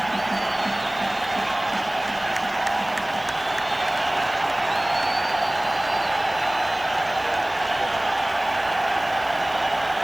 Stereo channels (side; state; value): right; noise; hiss, 25 dB below the sound